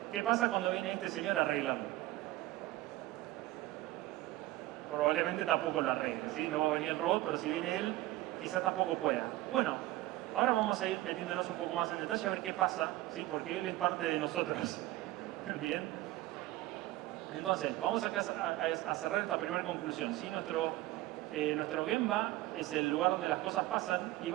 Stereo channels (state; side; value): quieter; left; 17.3 dB